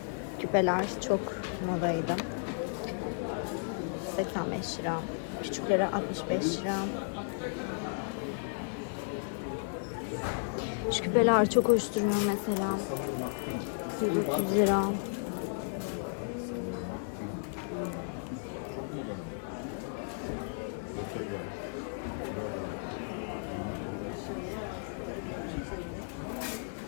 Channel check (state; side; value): silent; right; digital silence